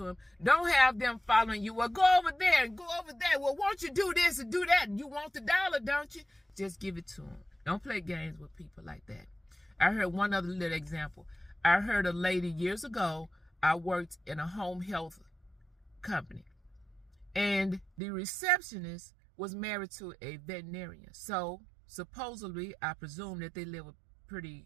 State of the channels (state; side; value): drops out; left; at 17.9 s